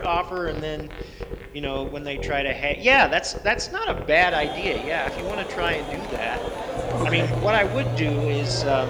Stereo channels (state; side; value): identical; both; correlation 1.00